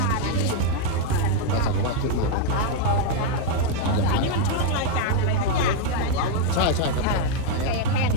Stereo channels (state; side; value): different; both; correlation 0.01